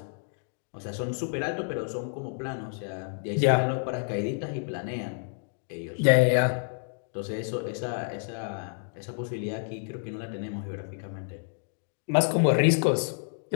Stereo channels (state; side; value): silent; right; digital silence